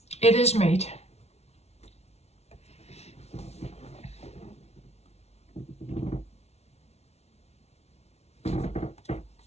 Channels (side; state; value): right; late; 0.31 ms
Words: It is made.